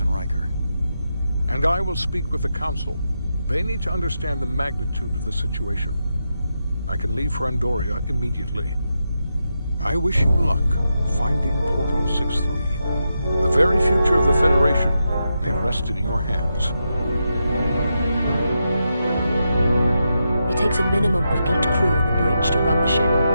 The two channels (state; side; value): inverted; both; correlation -0.86